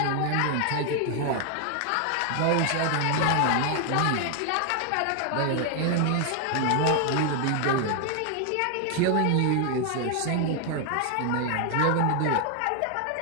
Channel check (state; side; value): different; both; correlation 0.00